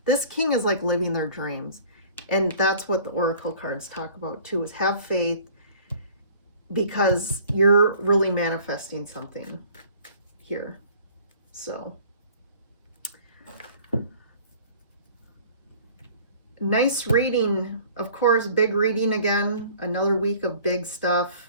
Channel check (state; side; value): inverted; both; correlation -0.50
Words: this king is like living their dreams. And that's what the Oracle cards talk about too, is have faith, because you're really manifesting something here. So nice reading. Of course, big reading again. Another week of big stuff.